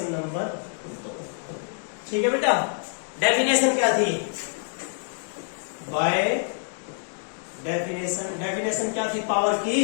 number 2। ठीक है बेटा। डेफिनेशन क्या थी, बाय डेफिनेशन क्या थी पावर की,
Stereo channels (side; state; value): right; silent; digital silence